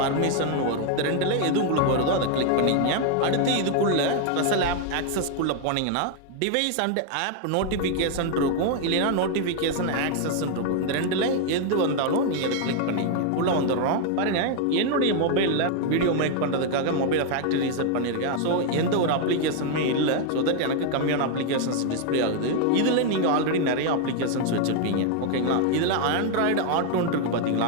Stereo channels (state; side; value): different; both; correlation 0.00